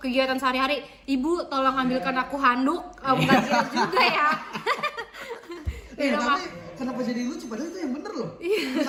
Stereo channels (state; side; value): identical; both; correlation 1.00